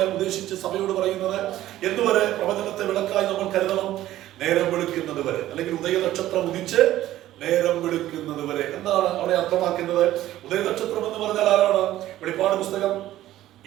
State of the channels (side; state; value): left; quieter; 14.1 dB